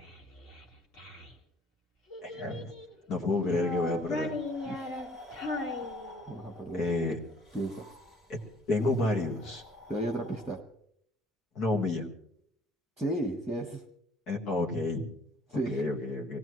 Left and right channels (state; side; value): normal; both; correlation 0.59